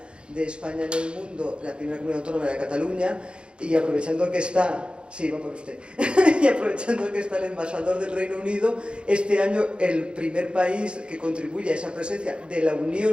de España en el mundo, la primera comunidad autónoma era Cataluña, y aprovechando que está, sí, va por usted, y aprovechando que está el embajador del Reino Unido, este año el primer país que contribuye a esa presencia de la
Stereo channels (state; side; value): late; left; 0.054 ms